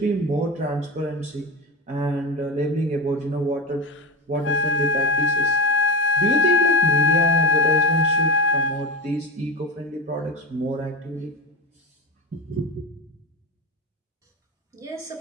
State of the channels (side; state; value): both; normal; correlation 0.22